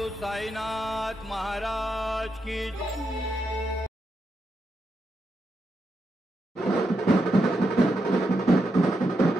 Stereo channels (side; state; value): both; normal; correlation 0.84